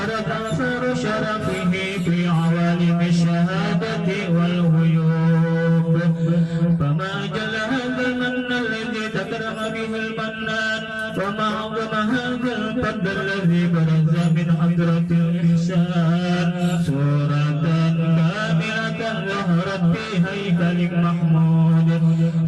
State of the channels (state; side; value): identical; both; correlation 1.00